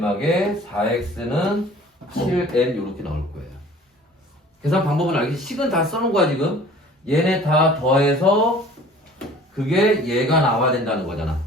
4x는 7n 이렇게 나올 거예요. 계산 방법은 알겠지? 식은 다 써놓은 거야 지금. 얘네 다 더해서 그게 얘가 나와야 된다는 거잖아.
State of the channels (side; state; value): both; normal; correlation 0.48